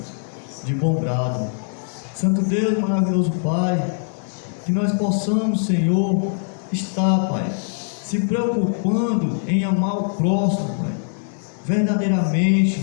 de bom grado. Santo Deus, maravilhoso Pai, que nós possamos, Senhor, estar, Pai, se preocupando em amar o próximo, Pai,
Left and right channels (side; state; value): right; silent; 64 dB below the other